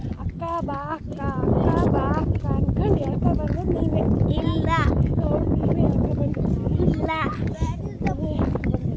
ಅಕ್ಕ ಬಾ ಅಕ್ಕ ಅಕ್ಕ ಬಾ ಅಕ್ಕ ಅನ್ಕೊಂಡು ಹೇಳ್ಕೊಬಂದು ನೀವೇ. ಇಲ್ಲ ನೀವೇ ಹೇಳ್ಕೊಬಂದು. ಇಲ್ಲ.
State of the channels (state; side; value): identical; both; correlation 1.00